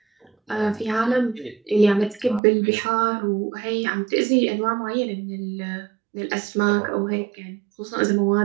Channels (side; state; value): left; drops out; at 2.4 s